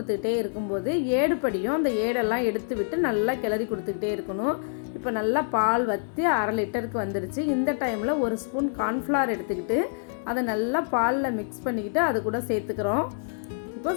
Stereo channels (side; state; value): right; silent; digital silence